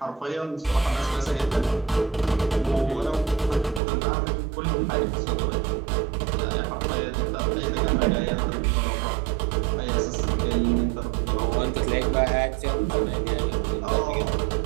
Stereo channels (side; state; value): left; drops out; at 3.8 s